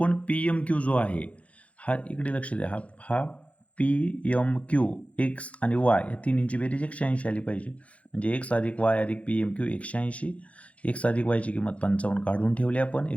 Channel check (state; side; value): late; right; 0.064 ms